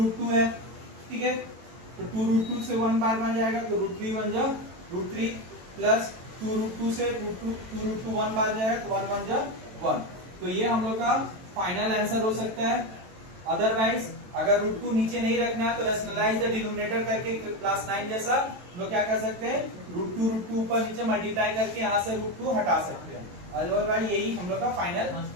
है, ठीक है। तो 2√2 से 1 बार बन जाएगा, तो √3 1 जा √3 प्लस 2√2 से 2√2 1 बार जाएगा, तो 1 1 जा 1। तो ये हम लोग का फाइनल आंसर हो सकता है, अदरवाइज अगर √2 नीचे नहीं रखना है तो रैशनलाइज द डिनोमिनेटर करके क्लास 9 जैसा लोग क्या कर सकते हैं, √2 ऊपर नीचे मल्टीप्लाई करके यहाँ से √2 हटा सकते हैं। अदरवाइज यही हम लोग का फाइनल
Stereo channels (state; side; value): late; left; 22 ms